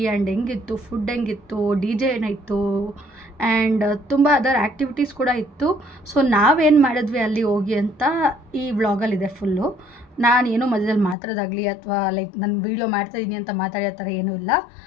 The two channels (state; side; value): drops out; right; at 11.2 s